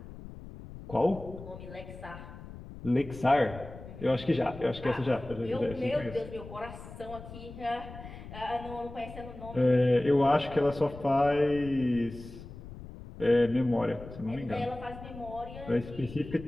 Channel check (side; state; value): left; noise; rumble, 14 dB below the sound